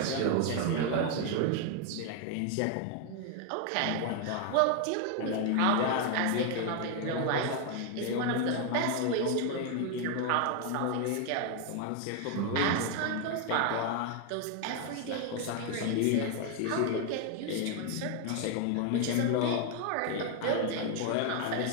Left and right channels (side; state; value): both; different; correlation 0.01